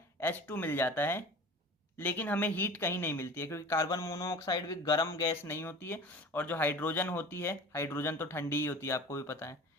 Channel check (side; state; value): both; normal; correlation 0.39